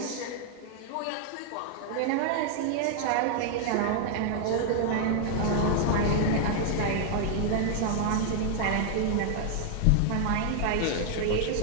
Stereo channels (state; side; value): different; both; correlation 0.00